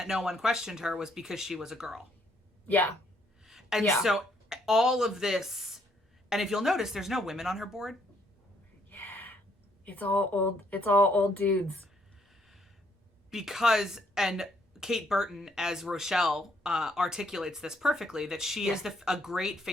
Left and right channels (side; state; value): both; normal; correlation 0.70